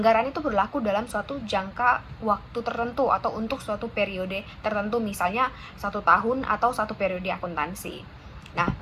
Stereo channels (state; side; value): identical; both; correlation 1.00